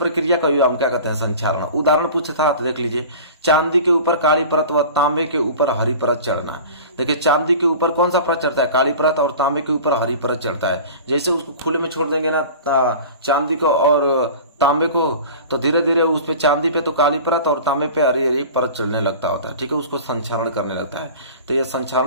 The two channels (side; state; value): both; inverted; correlation -0.38